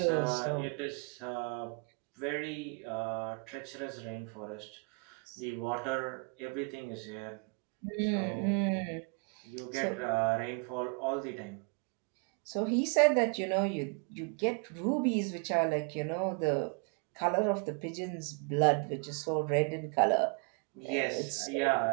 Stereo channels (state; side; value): quieter; left; 35.3 dB